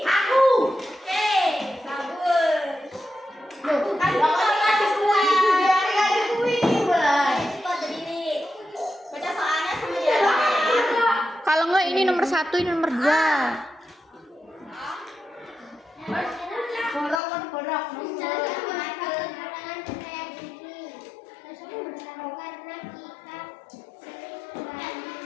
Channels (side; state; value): right; drops out; at 17.2 s